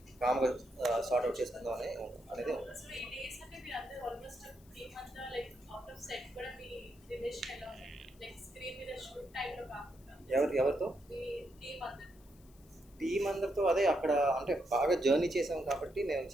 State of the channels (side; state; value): left; noise; hiss, 28 dB below the sound